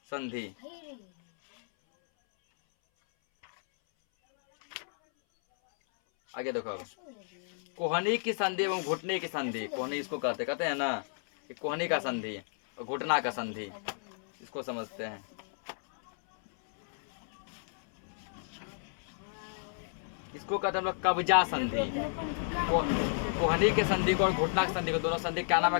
संधि। आगे देखो, अब कोहनी की संधि एवं घुटने की संधि। कोहनी इसको कहते हैं ना, कि कोहनी का संधि और घुटना का संधि, इसको समझते हैं। इसको कहते हैं हम लोग कब्जा संधि। कोहनी के संधि को और घुटना के संधि को, दोनों संधि क्या नाम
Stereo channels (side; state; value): right; silent; 56 dB below the other